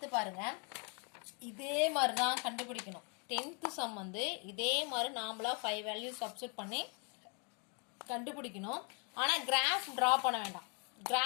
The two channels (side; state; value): right; quieter; 35.9 dB